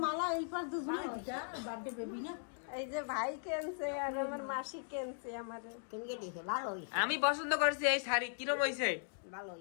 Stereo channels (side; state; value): right; silent; digital silence